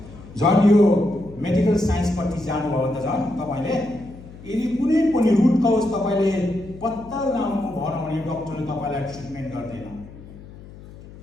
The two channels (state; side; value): noise; left; hum, 18 dB below the sound